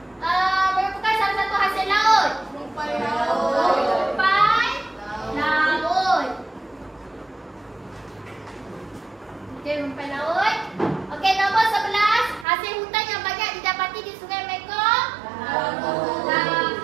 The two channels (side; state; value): left; drops out; at 12.5 s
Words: merupakan salah satu hasil laut. Rumpai laut. Okey, rumpai laut. Okey, nombor 11, hasil hutan yang banyak didapati di Sungai Mekong.